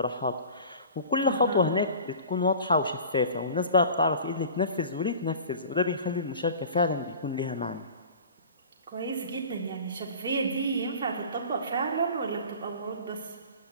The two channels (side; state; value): both; inverted; correlation -0.40